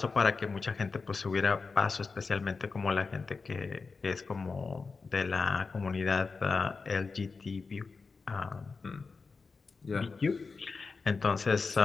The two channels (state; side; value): quieter; right; 4.5 dB